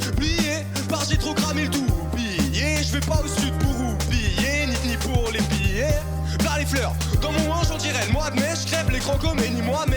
oublié, parce que j'ai trop cramé le tout oublié. Je vais pas au sud pour oublier, ni pour les billets. Vers les fleurs, dans mon hanche on dirait le mois de mai. Je crève l'écran comme Eni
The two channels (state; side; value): identical; both; correlation 1.00